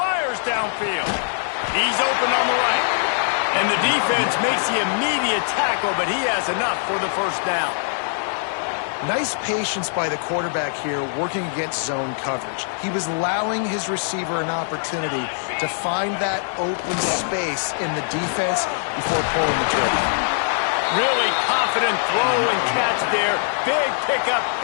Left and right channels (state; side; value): silent; right; digital silence